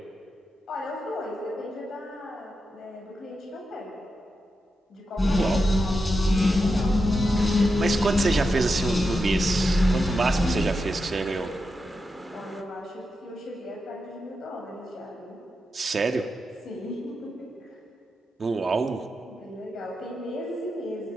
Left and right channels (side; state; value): both; normal; correlation 0.88